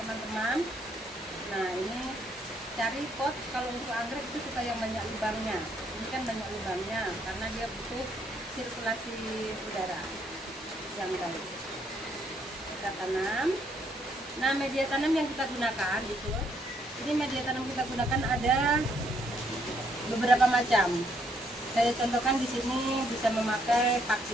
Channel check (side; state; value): both; normal; correlation 0.71